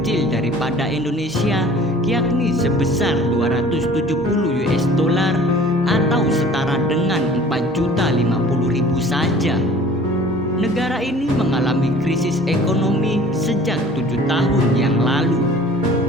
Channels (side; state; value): both; normal; correlation 0.48